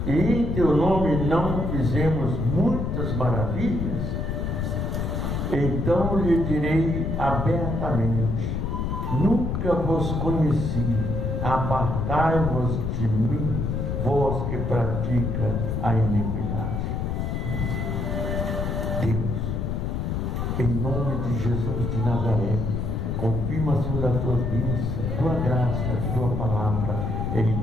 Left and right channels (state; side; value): noise; left; rumble, 1 dB below the sound